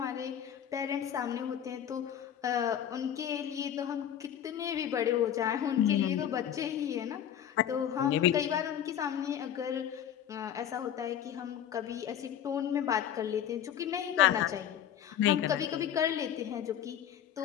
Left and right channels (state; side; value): quieter; right; 9.9 dB